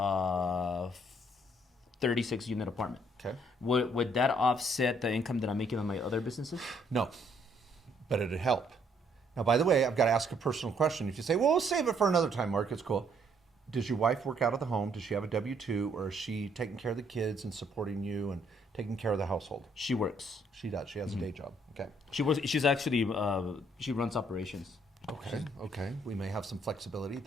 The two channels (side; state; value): both; normal; correlation 0.68